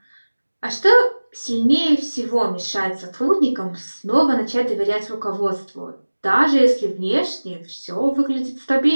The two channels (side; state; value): both; inverted; correlation -1.00